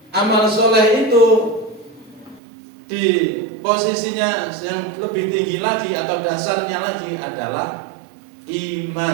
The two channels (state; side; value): drops out; left; at 2.4 s